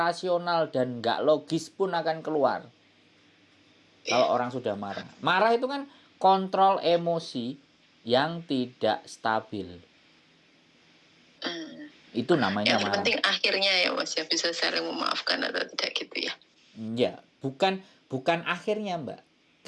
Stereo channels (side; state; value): both; identical; correlation 1.00